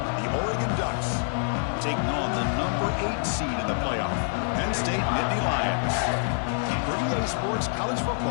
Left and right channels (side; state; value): right; silent; 61 dB below the other